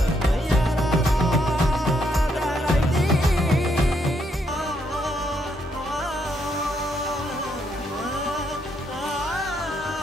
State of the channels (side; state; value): both; normal; correlation 0.75